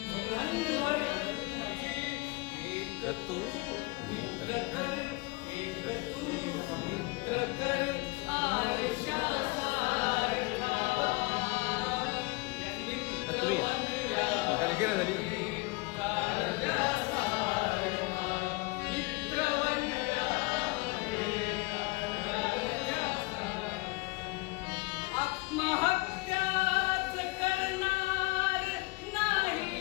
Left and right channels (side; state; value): right; quieter; 24.2 dB